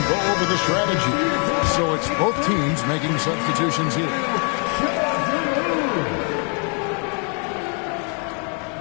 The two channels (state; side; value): quieter; right; 38.7 dB